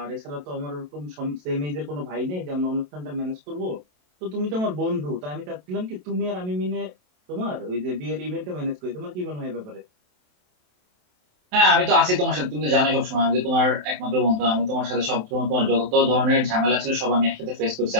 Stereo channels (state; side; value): late; left; 27 ms